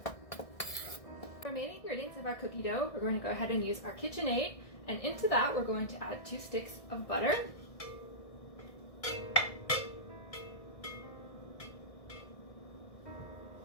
For remaining ingredients of our cookie dough, we're going to go ahead and use our KitchenAid. And into that, we're going to add 2 sticks of butter.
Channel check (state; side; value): late; right; 1.6 ms